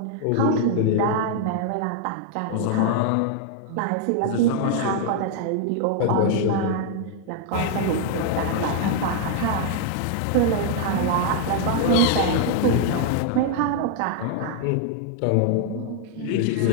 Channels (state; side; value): different; both; correlation -0.01